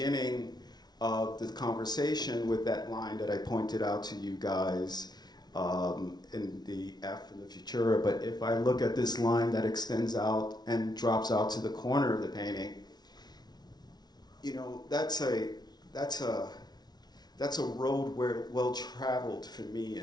of the conversation with that line that I pointed out to you guys in the F in the Futura. But if I look at this line that extends out and drops out to the corner of the painting, you know, that's a road well traveled for me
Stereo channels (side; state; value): right; late; 0.19 ms